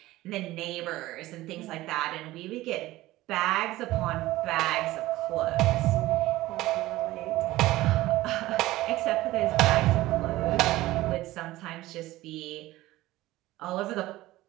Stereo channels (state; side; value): quieter; left; 17.2 dB